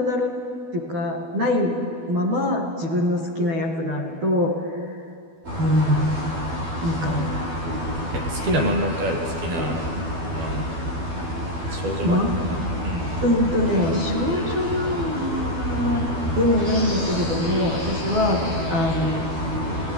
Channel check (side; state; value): left; late; 12 ms